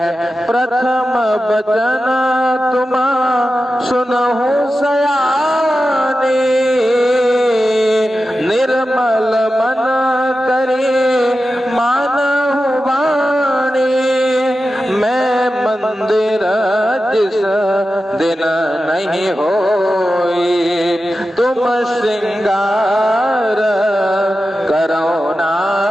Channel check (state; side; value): normal; both; correlation 0.92